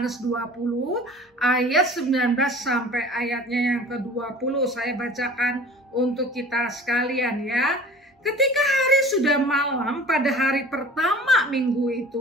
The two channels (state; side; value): normal; both; correlation 0.43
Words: 20 ayat 19 sampai ayatnya yang ke-20. Saya bacakan untuk kita sekalian ya. Ketika hari sudah malam pada hari pertama minggu